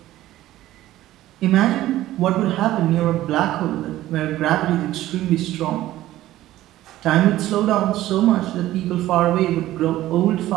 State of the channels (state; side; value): quieter; left; 14.9 dB